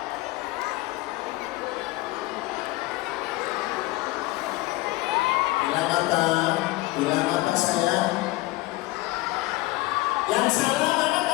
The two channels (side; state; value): right; quieter; 20.2 dB